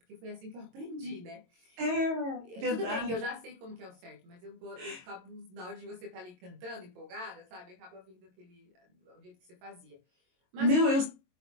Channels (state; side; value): late; left; 22 ms